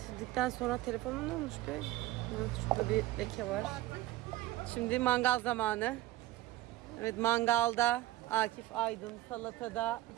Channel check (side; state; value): left; quieter; 16.2 dB